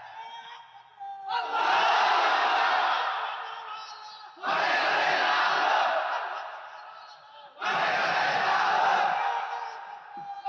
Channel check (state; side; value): identical; both; correlation 1.00